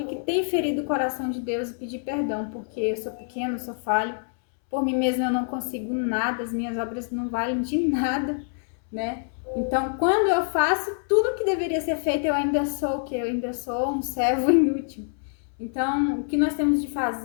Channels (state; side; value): silent; right; 61 dB below the other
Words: que tem ferido o coração de Deus e pedir perdão, porque eu sou pequeno, eu sou falho. Por mim mesmo eu não consigo nada, as minhas obras não valem de nada, né? Então, quando eu faço tudo que deveria ser feito, eu ainda sou o quê? Eu ainda sou um servo inútil. Então, o que nós temos de